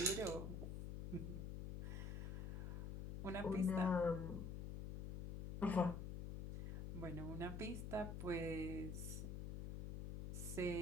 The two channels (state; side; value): noise; left; hum, 4 dB below the sound